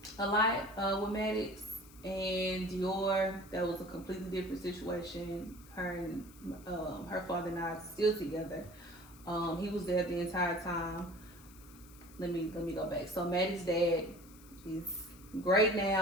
a lot with Maddox and Dior. That was a completely different situation. Her and her father and I are still together. He was there the entire time. Let me go back. So Maddie's dad is great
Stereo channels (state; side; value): noise; left; hiss, 23 dB below the sound